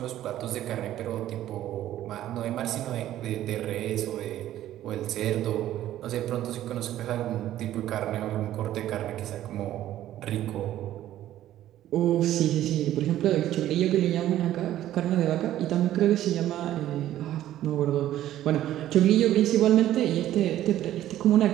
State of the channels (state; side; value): quieter; left; 13.0 dB